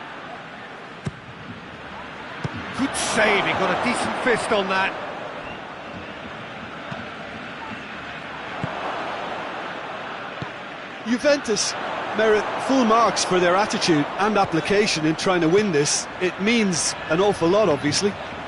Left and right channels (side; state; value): both; identical; correlation 1.00